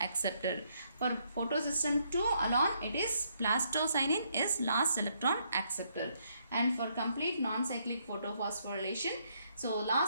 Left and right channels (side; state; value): both; inverted; correlation -0.73